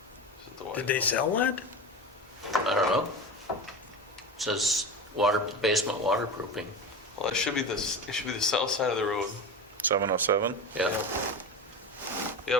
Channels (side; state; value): both; normal; correlation 0.26